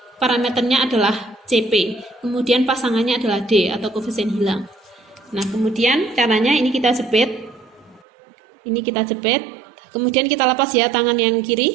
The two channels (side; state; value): left; drops out; at 8.0 s